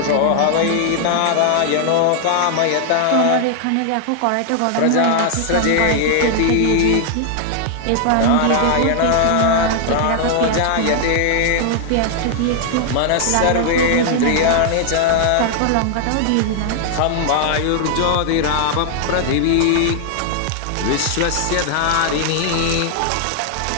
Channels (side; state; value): both; different; correlation -0.01